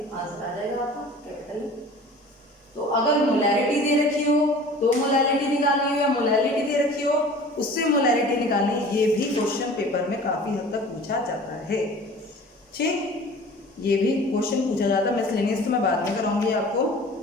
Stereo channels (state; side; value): normal; both; correlation 0.43